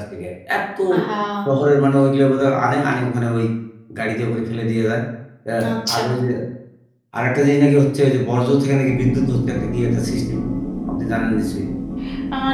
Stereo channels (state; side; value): identical; both; correlation 1.00